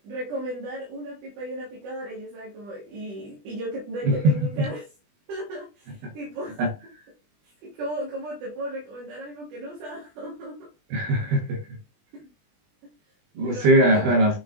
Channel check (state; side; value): late; left; 20 ms